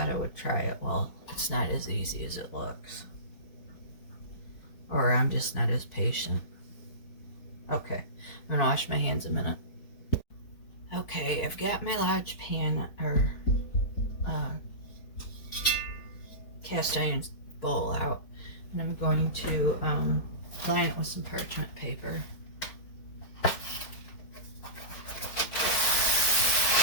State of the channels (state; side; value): late; right; 4.5 ms